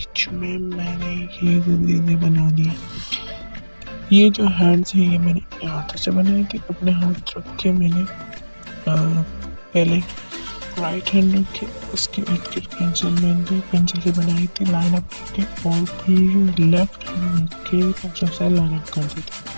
में मैंने ये चीज़ें बना दी। ये जो हैंड्स हैं ये मैंने अपने हाथों से बनाए थे। अपने हाथ रख के मैंने पहले राइट हैंड रखे, उसके इर्द गिर्द पेंसिल से बनाई थी लाइन अप करके, और फिर लेफ्ट हैंड रख के पेंसिल से लाइन अप कर दी थी।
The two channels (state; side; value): inverted; both; correlation -1.00